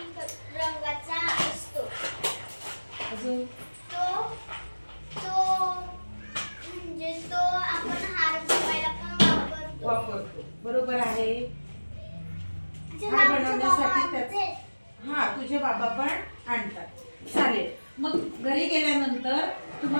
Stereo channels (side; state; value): both; inverted; correlation -1.00